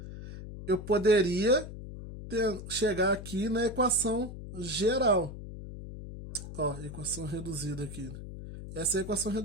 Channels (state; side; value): noise; left; hum, 11 dB below the sound